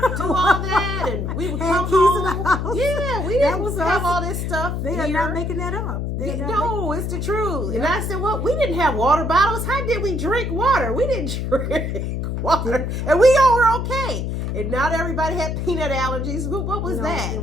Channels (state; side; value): noise; left; hum, 2 dB below the sound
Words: do all that, and we would come home. Yeah, we didn't have all this stuff. They are not making that up. No, it's the truth. And I said, well, we didn't have water bottles. How did we drink water? We didn't drink water, and we all were okay. And not everybody had peanut allergies. What was that? There